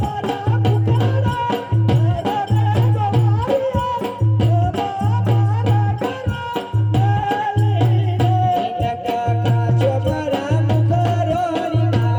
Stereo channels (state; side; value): identical; both; correlation 1.00